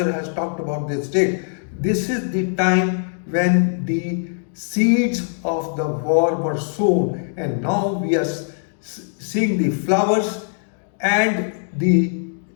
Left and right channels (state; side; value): silent; right; digital silence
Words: has talked about this date. This is the time when the seeds of the war were sown, and now we are seeing the flowers and the